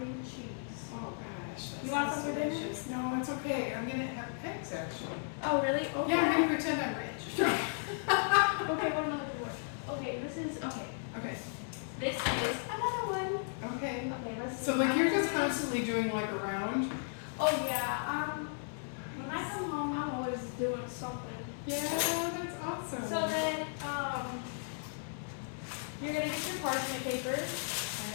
and cheese. Oh gosh, that You want sounds some for dinner? delicious. No, it's okay. I'm gonna have pigs actually. Oh, really? Okay. Yeah, I'm gonna pretend I'm rich. Okay, what am I looking for? Okay, this is, okay. Okay. This is another one. Okay. Okay, let's see. So like you're just constantly doing like a round? Oh yeah, when I come home, I'm always doing something. Yeah, that's awesome. So then, you're gonna get your parchment paper.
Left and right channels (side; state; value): right; silent; 54 dB below the other